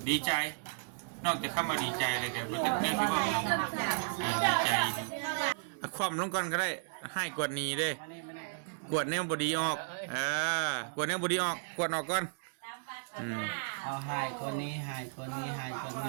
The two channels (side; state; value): left; silent; digital silence